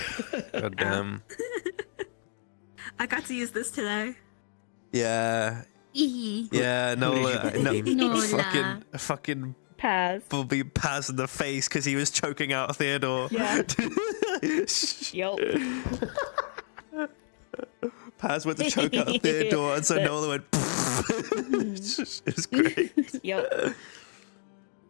God damn. I got to use this today. Yeah. Yeah, fucking Paz. will be Paz in the face because he was choking out Theodore. Yeah. Yup. Paz went to choke out Theodore, and so Nola went. It was great. Yep.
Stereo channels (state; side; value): silent; right; digital silence